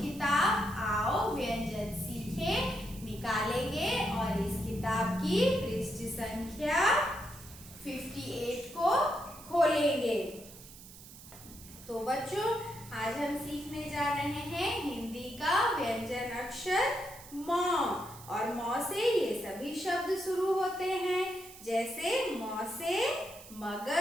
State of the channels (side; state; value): right; noise; hiss, 17 dB below the sound